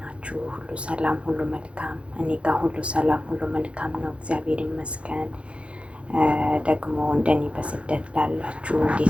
ሁሉ ሰላም፣ ሁሉ መልካም? እኔ ጋር ሁሉ ሰላም፣ ሁሉ መልካም ነው፣ እግዚአብሔር ይመስገን። ደግሞ እንደኔ በስደት ላላችሁ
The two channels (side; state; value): left; late; 0.060 ms